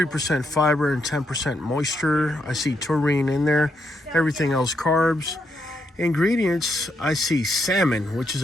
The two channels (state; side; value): normal; both; correlation 0.79